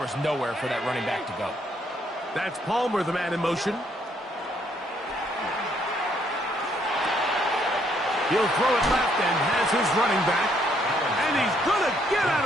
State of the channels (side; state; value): both; normal; correlation 0.70